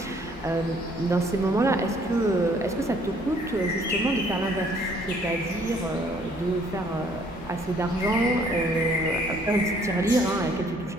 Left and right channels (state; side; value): normal; both; correlation 0.61